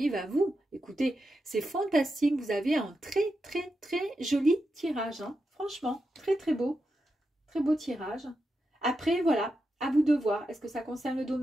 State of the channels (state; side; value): normal; both; correlation 0.87